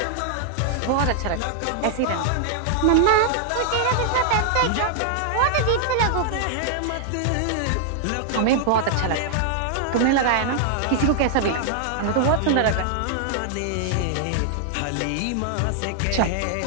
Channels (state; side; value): different; both; correlation -0.01